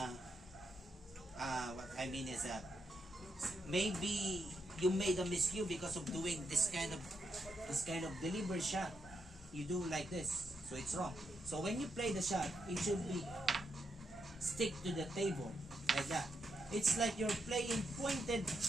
what I mean is maybe you made a miscue because of doing this kind of deliberate shot. You do like this, so it's wrong. So when you play the shot, it should be stick to the table like that. It's like you're playing pointed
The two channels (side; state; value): both; normal; correlation 0.82